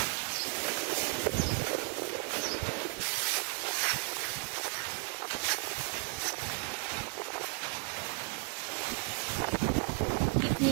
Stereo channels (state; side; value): quieter; left; 34.2 dB